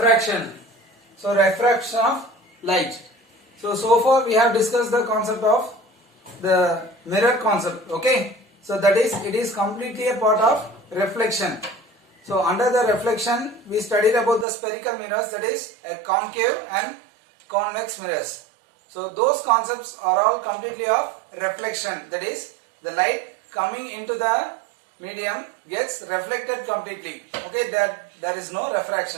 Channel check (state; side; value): drops out; left; at 14.5 s